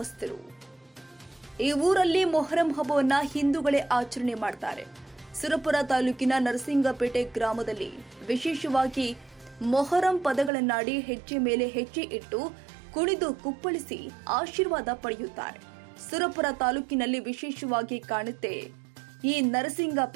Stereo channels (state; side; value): drops out; left; at 10.5 s